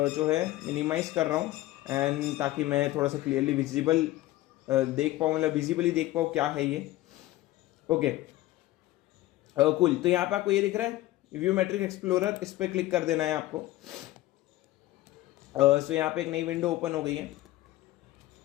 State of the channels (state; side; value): quieter; right; 16.6 dB